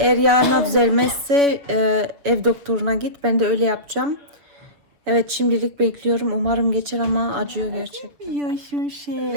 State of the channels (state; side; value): late; left; 6.8 ms